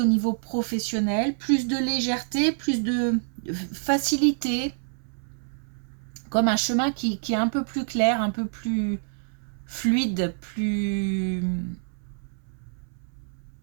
niveau professionnel, plus de légèreté, plus de facilité, comme un chemin qui est un peu plus clair, un peu plus fluide, plus...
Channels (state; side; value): silent; left; 60 dB below the other